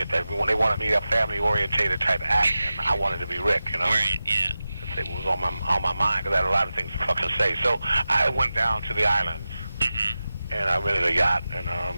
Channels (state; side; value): inverted; both; correlation -0.94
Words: That when they wanted me a family-orientated type act, and I wanted to be Rick, Right, yeah. It was on my mind because I had a lot of things to fucking say. So I went down to the islands, Mm-hmm. and I rented a yacht,